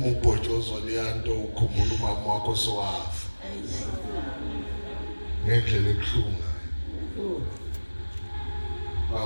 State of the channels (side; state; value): both; inverted; correlation -1.00